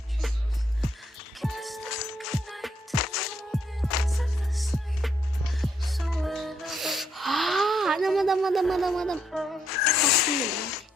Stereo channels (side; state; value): both; normal; correlation 0.75